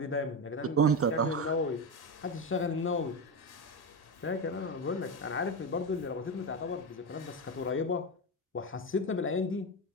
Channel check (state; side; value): normal; both; correlation 0.16